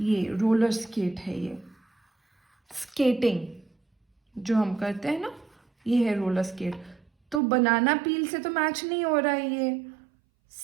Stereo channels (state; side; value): drops out; left; at 7.4 s